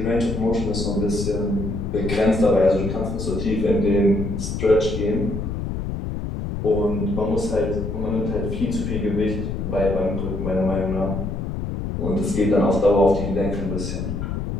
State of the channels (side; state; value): left; noise; rumble, 4 dB below the sound